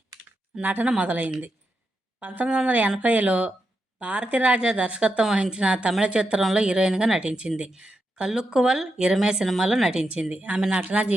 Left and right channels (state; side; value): normal; both; correlation 0.85